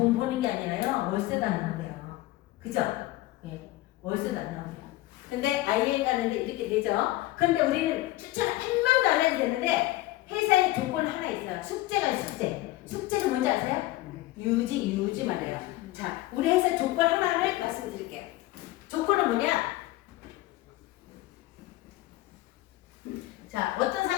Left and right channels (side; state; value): right; quieter; 17.6 dB